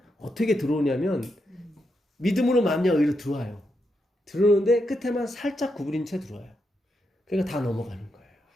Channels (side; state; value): both; normal; correlation 0.83